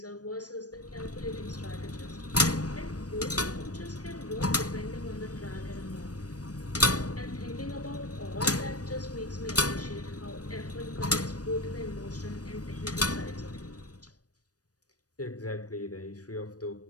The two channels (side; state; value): right; late; 0.68 ms